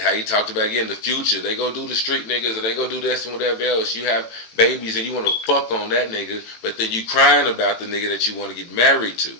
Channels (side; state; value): right; late; 18 ms